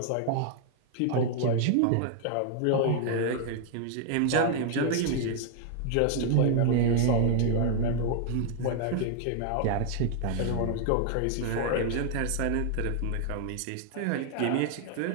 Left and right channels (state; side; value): different; both; correlation 0.00